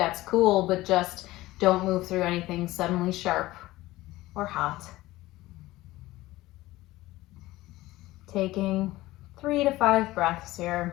cool, but just don't move through anything suddenly sharp or hot. Taking 3 to 5 breaths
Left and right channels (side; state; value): right; quieter; 17.8 dB